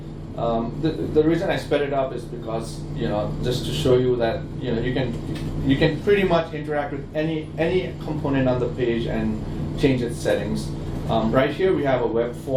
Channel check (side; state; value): both; identical; correlation 1.00